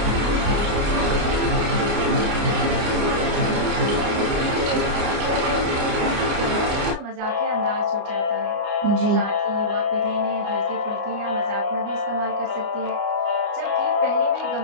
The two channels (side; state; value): left; late; 29 ms